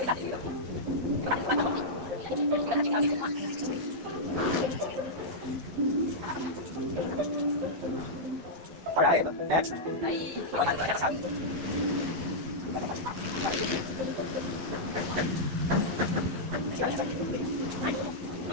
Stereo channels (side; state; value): left; late; 11 ms